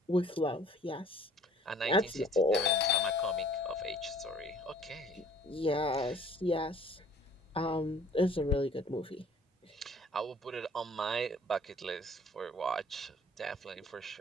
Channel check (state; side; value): normal; both; correlation 0.54